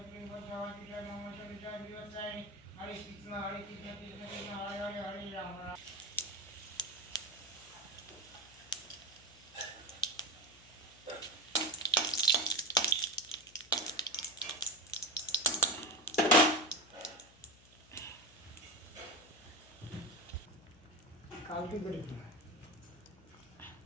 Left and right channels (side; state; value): left; noise; hum, 24 dB below the sound